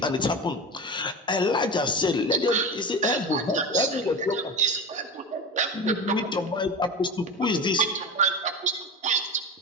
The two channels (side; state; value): both; normal; correlation 0.26